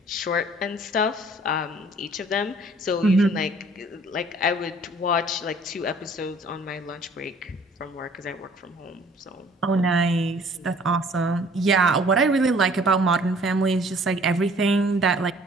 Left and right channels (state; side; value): normal; both; correlation 0.55